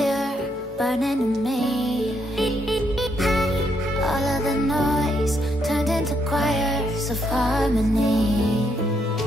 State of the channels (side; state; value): both; normal; correlation 0.75